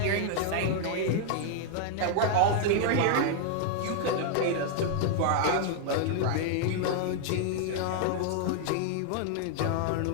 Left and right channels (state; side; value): different; both; correlation 0.00